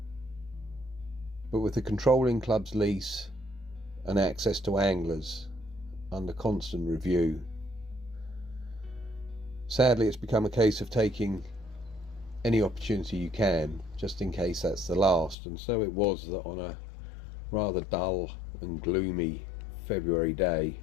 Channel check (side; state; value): right; drops out; at 15.4 s